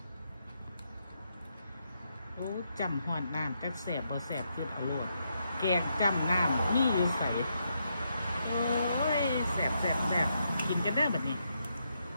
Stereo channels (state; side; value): inverted; both; correlation -0.80